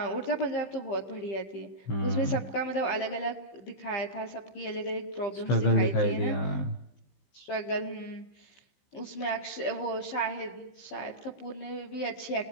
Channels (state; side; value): late; right; 15 ms